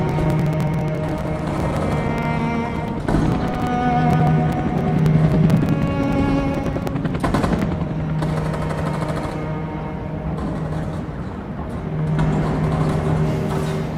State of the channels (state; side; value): identical; both; correlation 1.00